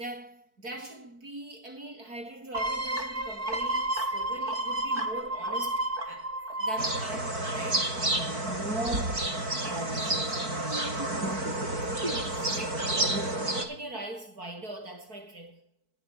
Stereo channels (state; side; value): late; left; 4.5 ms